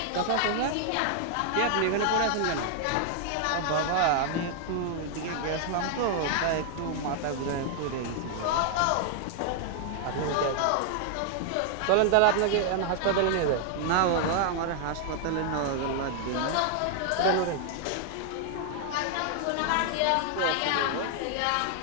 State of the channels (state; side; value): different; both; correlation 0.00